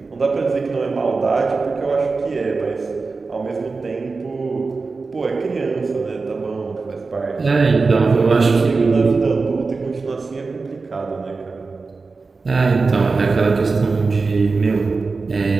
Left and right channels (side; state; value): left; quieter; 4.2 dB